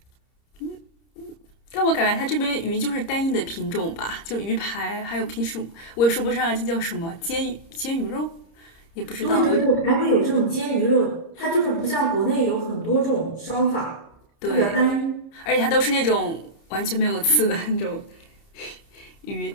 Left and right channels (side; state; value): right; late; 30 ms